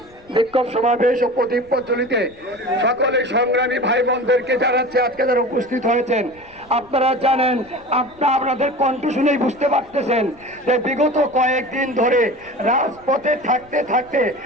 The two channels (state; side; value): noise; left; rumble, 27 dB below the sound